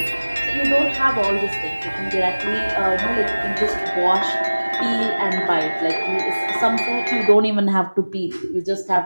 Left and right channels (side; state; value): both; inverted; correlation -1.00